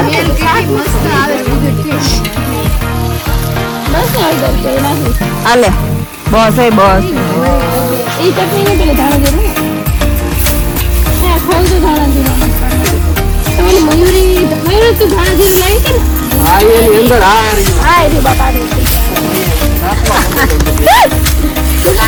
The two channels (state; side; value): identical; both; correlation 1.00